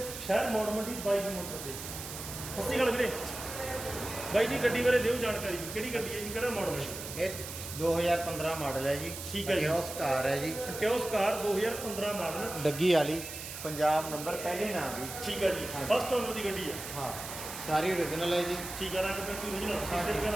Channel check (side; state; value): right; noise; hiss, 9 dB below the sound